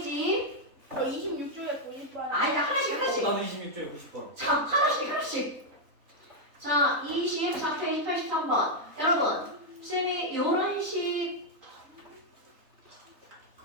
저 26조에 90번. 아니, 하나씩. 나는 26쪽에 90번. 자, 하나씩. 자, 24페이지 83번. 여러분, 쌤이 이런 식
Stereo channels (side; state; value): left; late; 3.6 ms